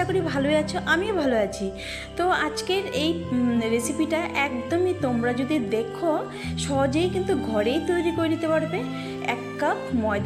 করি ভালোই আছো, আমিও ভালো আছি। তো আজকের এই রেসিপিটা একদমই তোমরা যদি দেখো সহজেই কিন্তু ঘরেই তৈরি করে নিতে পারবে। 1 কাপ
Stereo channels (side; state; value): both; identical; correlation 1.00